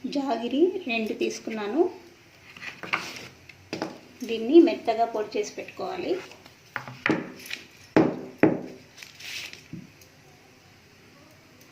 జాగిరి 2 తీసుకున్నాను. దీన్ని మెత్తగా పొడి చేసి పెట్టుకోవాలి.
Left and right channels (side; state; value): both; identical; correlation 1.00